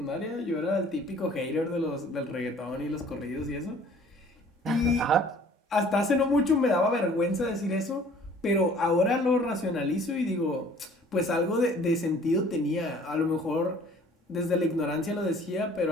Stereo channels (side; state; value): both; normal; correlation 0.53